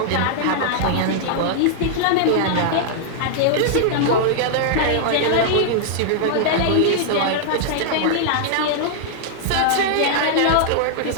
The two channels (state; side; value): different; both; correlation -0.01